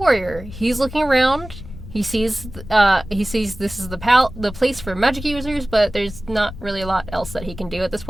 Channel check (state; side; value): noise; left; rumble, 13 dB below the sound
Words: He's looking around. He sees this is the place for magic users, but there's not really a lot else that he can do at this